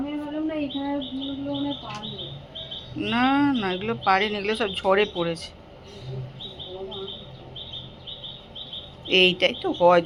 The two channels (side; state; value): both; identical; correlation 1.00